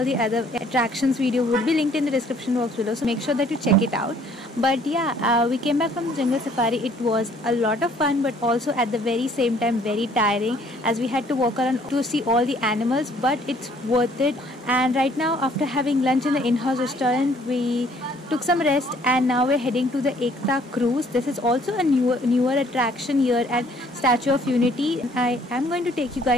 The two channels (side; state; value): both; normal; correlation 0.60